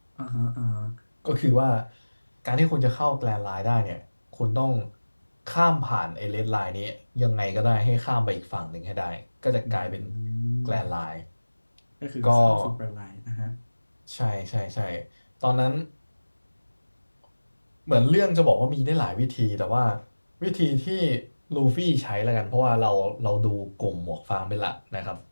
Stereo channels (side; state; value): both; inverted; correlation -1.00